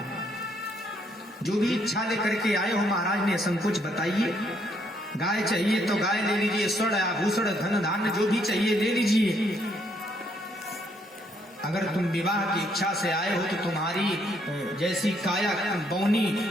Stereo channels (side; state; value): both; normal; correlation 0.71